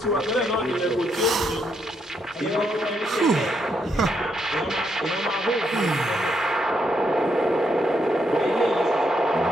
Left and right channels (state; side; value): normal; both; correlation 0.78